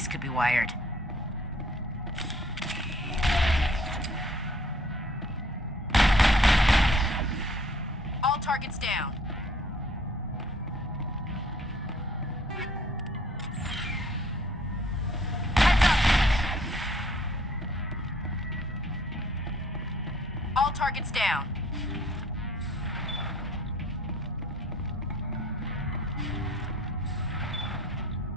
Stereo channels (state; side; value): normal; both; correlation 0.58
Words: could be wired. All targets down. Heads up! All targets down.